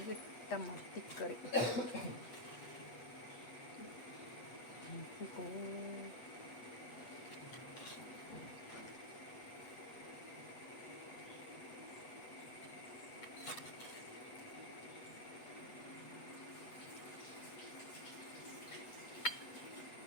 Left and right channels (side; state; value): right; late; 8.2 ms